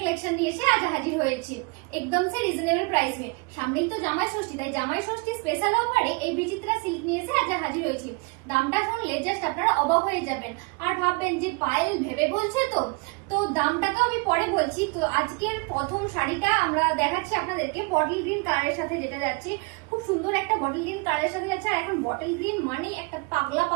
নিয়ে এসে আজ হাজির হয়েছি একদম সে রিজনেবল প্রাইস মে। সামনেই তো জামাই ষষ্ঠী, তাই জামাই ষষ্ঠী স্পেশাল অফারে এই বিচিত্রা সিল্ক নিয়ে এসে আজ হাজির হয়েছি। দামটা শুনলে জাস্ট আপনারা অবাক হয়ে যাবেন আর ভাববেন যে পায়েল ভেবে বলছে তো। তো দামটা তো আমি পরে বলছি। তো আজকের প্রথম শাড়িটা আমরা দেখাচ্ছি আপনাদেরকে বটল গ্রিন কালারের সাথে, যেটা যাচ্ছে খুব সুন্দর একটা বটল গ্রিন কালারের সাথে যাচ্ছে। আর এখন বটল গ্রিন মানে একটা পাগলা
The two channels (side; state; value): left; quieter; 30.8 dB